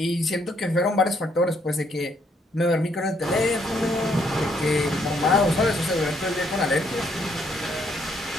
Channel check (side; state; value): both; normal; correlation 0.71